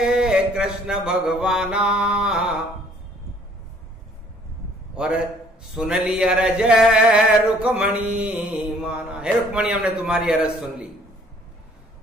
कृष्ण भगवाना, और सुन ली अरज रुक्मणी माना। हे रुक्मणी, हमने तुम्हारी अरज सुन ली,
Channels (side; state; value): both; normal; correlation 0.59